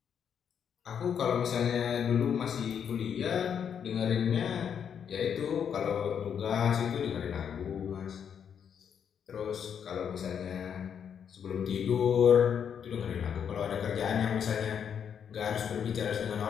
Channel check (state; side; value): quieter; right; 7.9 dB